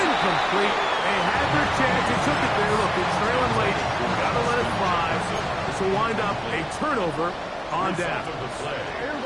They had their chance. They took it there. Look, it's trailing late. Got to let it fly. This will wind up a turnover on down.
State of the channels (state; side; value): identical; both; correlation 1.00